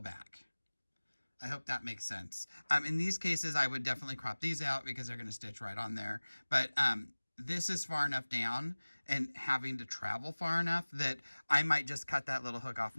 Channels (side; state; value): both; inverted; correlation -1.00